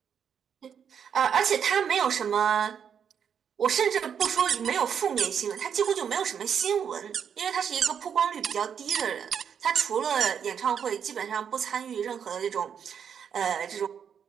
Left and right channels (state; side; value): quieter; left; 7.7 dB